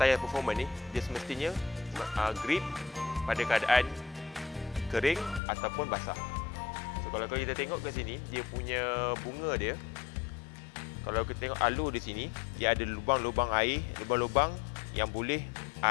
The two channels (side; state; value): right; drops out; at 5.4 s